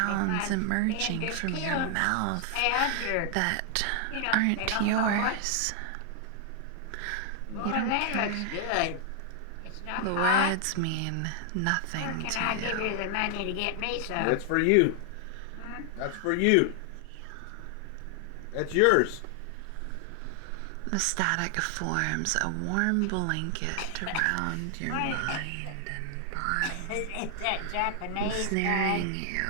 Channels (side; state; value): both; different; correlation 0.00